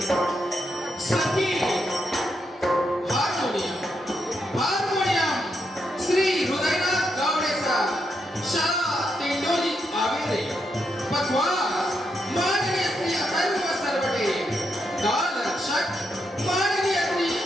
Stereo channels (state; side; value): normal; both; correlation 0.81